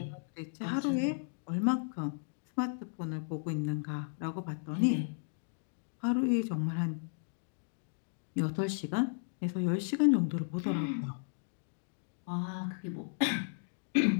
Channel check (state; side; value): silent; right; digital silence